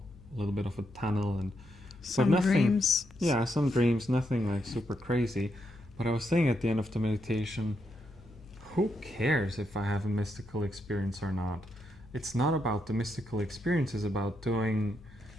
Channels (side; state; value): left; noise; hum, 22 dB below the sound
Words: a little bit of a tunnel and some dreams. Yeah, some dreams, nothing like super crazy. But I was saying at the end of the meditation, who cares if I have a mystical experience or not? It's not about the mystical experience, it's about doing